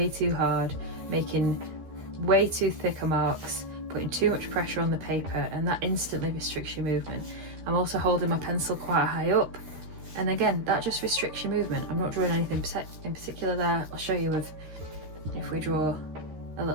too hard, making way too thicker marks, putting too much pressure on the paper, and that instantly restricts your movement. I'm also holding my pencil quite high up, and again, that just restricts your movement. I'm not drawing anything in particular there. I'll show you if we draw a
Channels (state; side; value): late; left; 13 ms